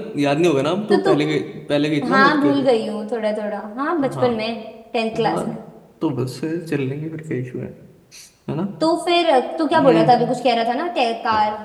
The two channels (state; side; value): identical; both; correlation 1.00